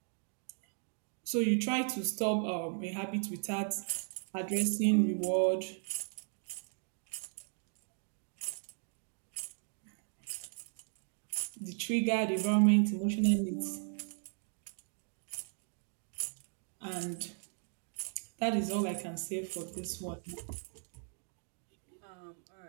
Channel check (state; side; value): silent; left; 53 dB below the other